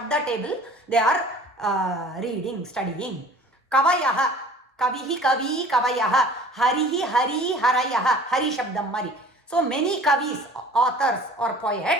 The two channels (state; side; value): normal; both; correlation 0.46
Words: table, they are reading, studying. கவயஹ, கவிஹி கவி கவயஹ, ஹரிஹி ஹரி ஹரயஹ, ஹரி சப்தம் மாதிரி. ஸோ மெனி கவிஸ், ஆத்தர்ஸ் ஆர்